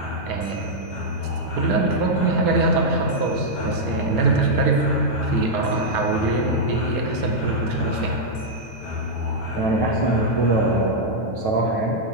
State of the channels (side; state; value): right; late; 9.3 ms